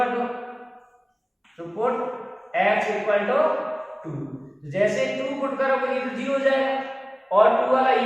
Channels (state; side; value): identical; both; correlation 1.00